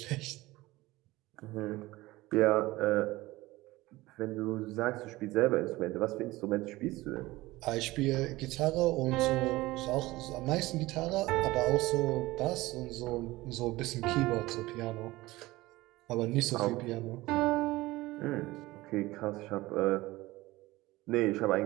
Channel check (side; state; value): left; quieter; 19.2 dB